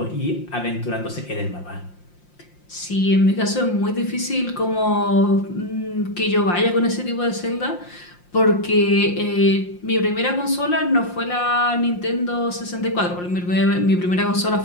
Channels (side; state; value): right; late; 5.7 ms